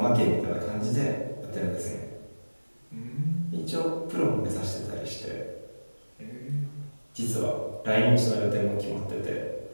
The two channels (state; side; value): inverted; both; correlation -1.00